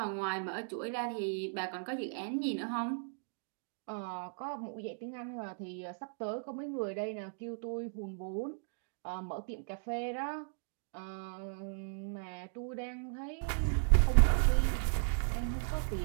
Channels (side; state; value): left; silent; digital silence